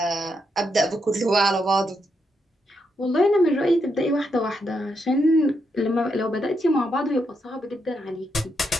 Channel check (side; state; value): both; normal; correlation 0.80